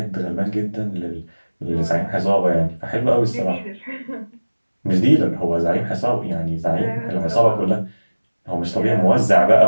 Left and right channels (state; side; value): inverted; both; correlation -1.00